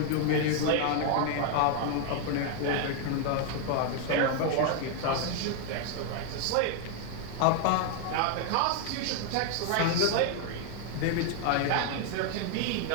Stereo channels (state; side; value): different; both; correlation 0.00